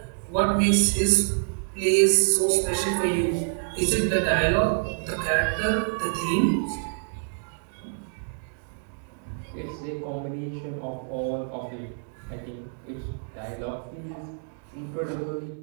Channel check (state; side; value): silent; left; digital silence